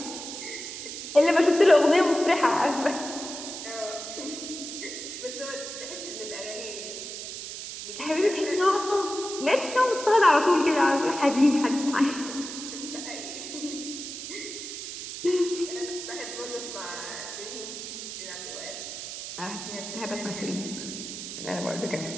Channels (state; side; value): noise; right; hiss, 8 dB below the sound